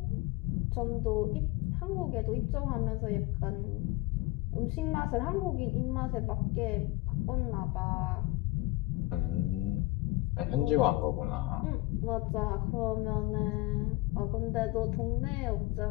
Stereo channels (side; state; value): right; quieter; 20.8 dB